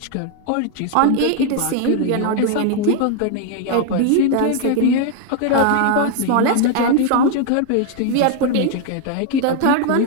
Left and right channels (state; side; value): different; both; correlation 0.00